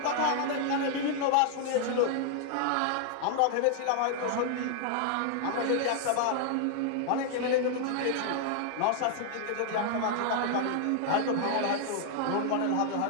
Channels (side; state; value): both; different; correlation 0.00